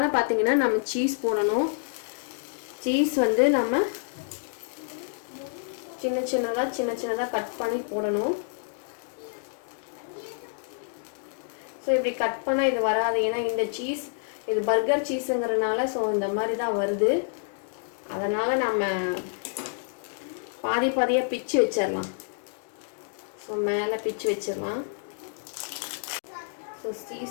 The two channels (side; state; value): right; silent; digital silence